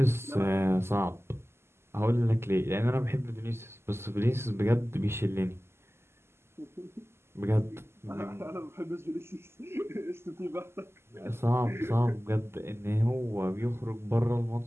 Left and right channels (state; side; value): late; left; 0.12 ms